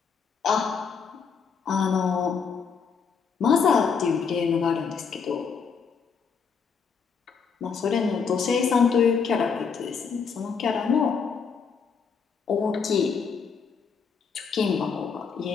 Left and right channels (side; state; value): right; quieter; 6.0 dB